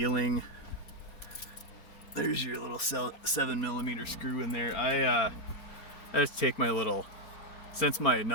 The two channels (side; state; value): right; late; 4.2 ms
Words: There's your little 7mm screw in there. I just take my little, since my